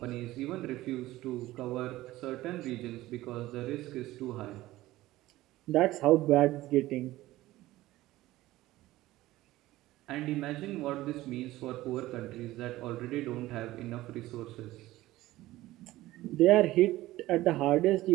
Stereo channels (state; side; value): quieter; left; 16.8 dB